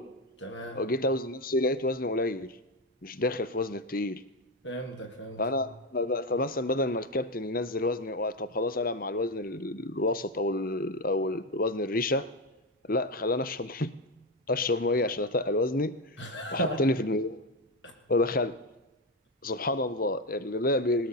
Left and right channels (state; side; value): normal; both; correlation 0.13